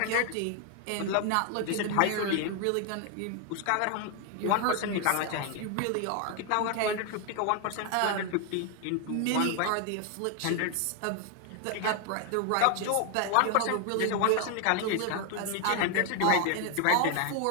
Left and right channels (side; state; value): both; different; correlation 0.00